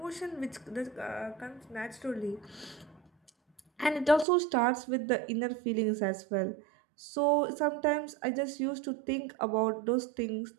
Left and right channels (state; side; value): drops out; left; at 4.2 s